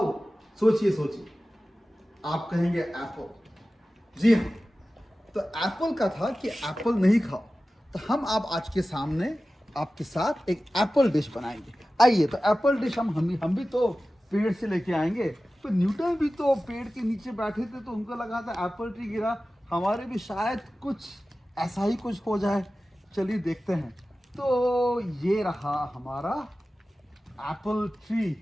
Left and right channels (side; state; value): both; normal; correlation 0.95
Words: सोचिए सोचिए। आप कहेंगे एप्पल। जी हाँ, तो एप्पल का था कि एप्पल नहीं खाओ। तो हम आप आज के सामने आपके साथ एक एप्पल डिश बनाएंगे। आइए, तो एप्पल डिश हम भी तो पेड़ से लेके आएंगे। तो न्यूटन भी तो पेड़ के नीचे बैठे थे, तो उनको लगा था एप्पल ट्री गिरा, हमारे भी शायद कुछ ऐसा ही कुछ हो जाए। चलिए देखते हैं। तो ये रहा हमारा एप्पल ट्री।